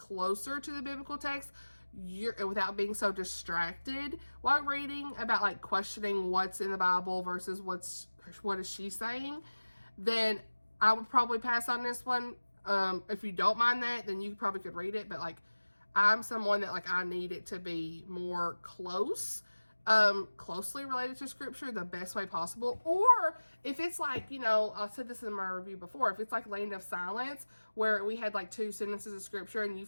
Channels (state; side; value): inverted; both; correlation -1.00